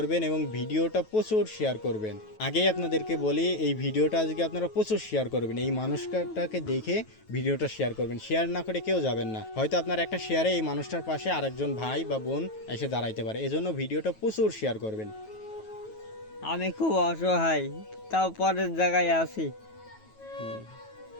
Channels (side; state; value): right; late; 9.3 ms